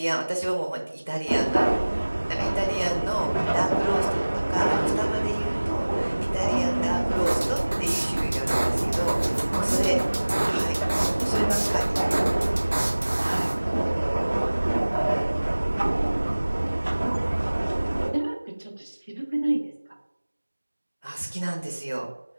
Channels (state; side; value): inverted; both; correlation -1.00